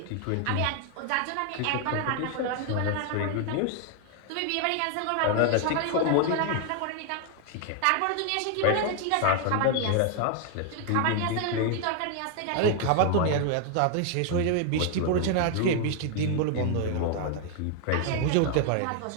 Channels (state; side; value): different; both; correlation 0.00